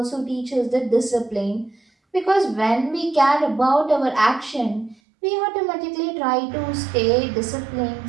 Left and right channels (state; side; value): drops out; left; at 5.0 s